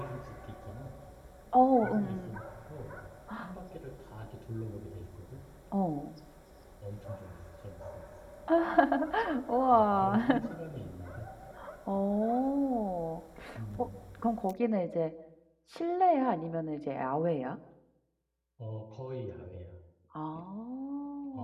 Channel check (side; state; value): both; identical; correlation 1.00